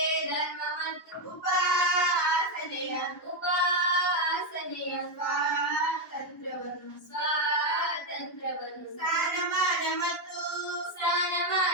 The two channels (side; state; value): both; normal; correlation 0.05